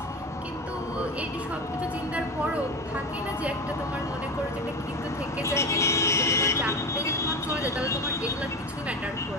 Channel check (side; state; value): both; normal; correlation 0.24